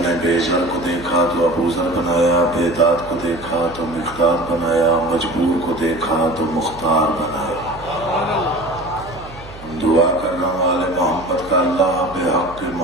نے بے زر کو دیکھا تو ابوذر بنایا، بے داد کو دیکھا تو مقداد بنایا، مجبور کو دیکھا تو مختار بنایا۔ دعا کر رہا ہوں آل محمد کا اللہ بے حق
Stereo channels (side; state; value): right; noise; hum, 17 dB below the sound